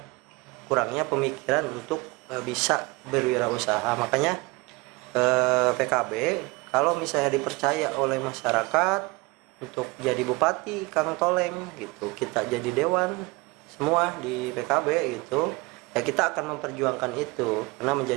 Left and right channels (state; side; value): quieter; left; 24.4 dB